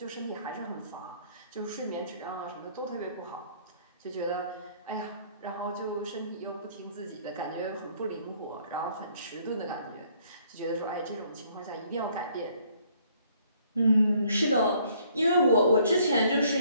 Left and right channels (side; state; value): both; inverted; correlation -0.63